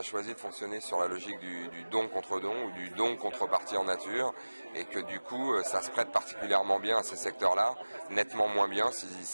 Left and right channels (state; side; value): inverted; both; correlation -1.00